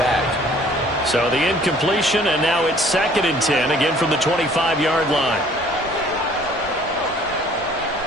So the incompletion, and now it's 2nd and 10, again from the 25-yard line.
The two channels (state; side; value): normal; both; correlation 0.55